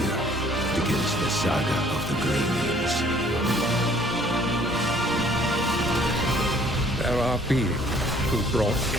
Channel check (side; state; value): both; normal; correlation 0.59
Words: begins the saga of the Grey Maids. There are beings who brought